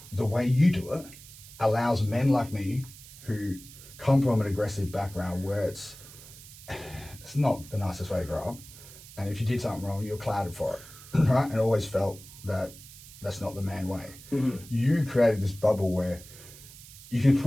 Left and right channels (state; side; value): noise; right; hiss, 18 dB below the sound